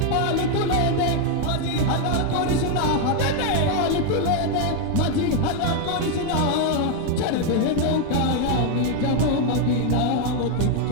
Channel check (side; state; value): both; different; correlation 0.01